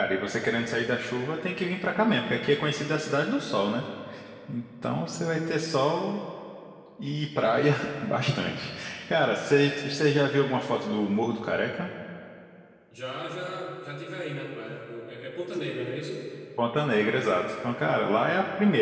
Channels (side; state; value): both; identical; correlation 1.00